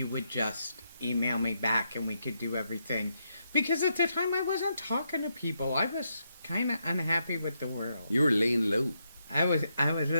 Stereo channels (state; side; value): inverted; both; correlation -0.81